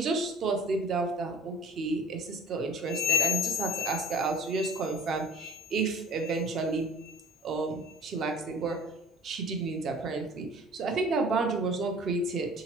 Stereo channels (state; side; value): normal; both; correlation 0.45